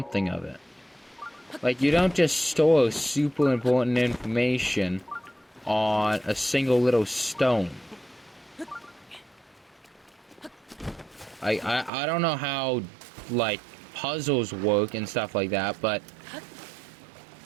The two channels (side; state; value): left; drops out; at 11.9 s